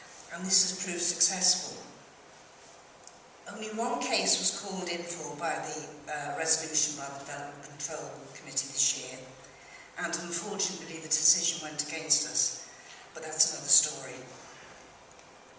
and this has proved successful. Only one case was called in for by the resolution by the Development Control Committee this year, and unfortunately the decision went against us, but that's another story.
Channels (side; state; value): both; identical; correlation 1.00